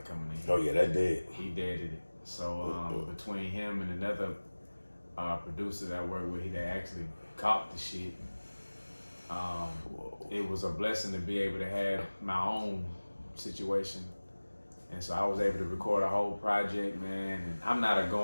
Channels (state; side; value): inverted; both; correlation -1.00